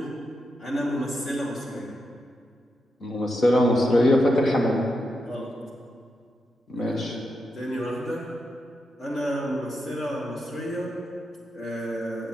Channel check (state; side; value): normal; both; correlation 0.85